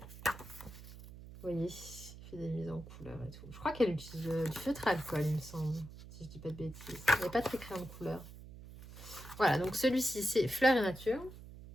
Vous voyez, elle fait des mises en couleur et tout. Je crois qu'elle utilise du feutre à alcool, il me semble. Si je dis pas de bêtises. Il n'y a pas très crayon de couleur. Voilà, donc celui-ci, c'est Fleurs et Nature.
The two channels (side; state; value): right; noise; hum, 15 dB below the sound